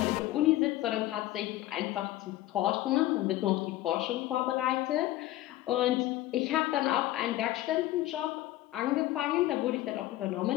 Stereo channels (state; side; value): quieter; right; 15.7 dB